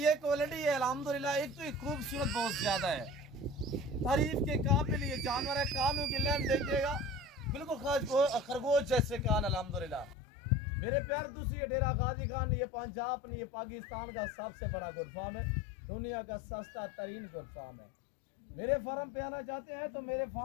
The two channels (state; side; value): drops out; right; at 10.2 s